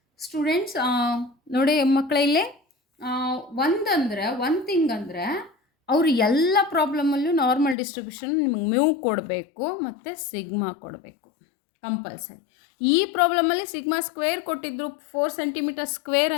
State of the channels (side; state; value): right; drops out; at 7.8 s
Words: Students ನೋಡಿ ಮಕ್ಕಳಲ್ಲಿ ಒಂದು thing ಅಂದರೆ ಅವರು ಎಲ್ಲ ಪ್ರಾಬ್ಲಮಲ್ಲೂ normal distribution ನಿಮಗೆ mu ಕೊಡಬೇಕು ಮತ್ತು ಸಿಗ್ಮಾ ಕೊಡಬೇಕು ಕಂಪಲ್ಸರಿ. ಈ ಪ್ರಾಬ್ಲಮಲ್ಲಿ ಸಿಗ್ಮಾ ಸ್ಕ್ವೇರ್ ಕೊಟ್ಟಿದ್ರು, 4 ಸೆಂಟಿಮೀಟರ್ ಸ್ಕ್ವೇರ್